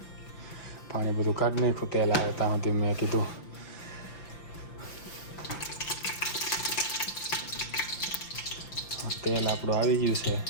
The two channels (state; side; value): late; right; 5.9 ms